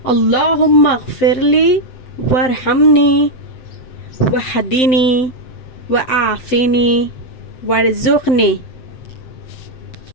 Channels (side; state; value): right; late; 7.8 ms